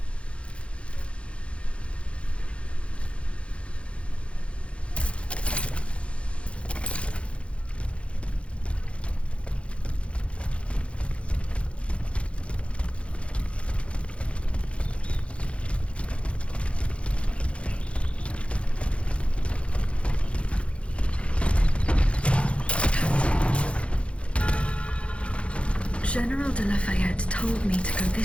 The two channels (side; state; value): right; late; 0.060 ms